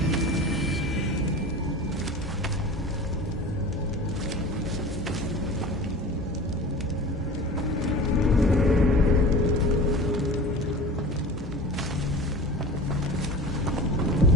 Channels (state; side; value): normal; both; correlation 0.36